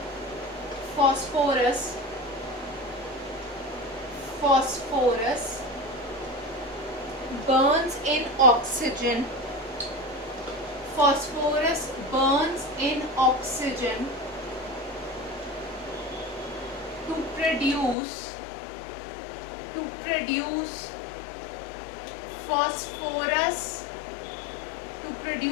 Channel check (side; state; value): right; drops out; at 17.9 s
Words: phosphorus. Phosphorus burns in oxygen. Phosphorus burns in oxygen to produce phosphorus